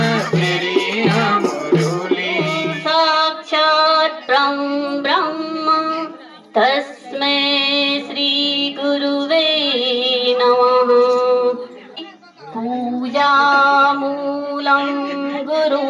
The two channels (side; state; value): both; identical; correlation 1.00